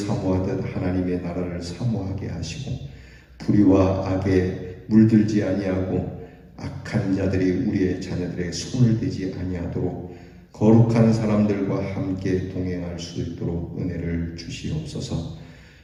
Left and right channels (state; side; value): identical; both; correlation 1.00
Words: 하나님의 나라를 사모하게 하시고 불의와 악에 물들지 아니하고 악한 자들이 우리의 자녀들의 손을 대지 아니하도록 거룩한 사람들과 함께 동행할 수 있도록 은혜를 주시옵소서.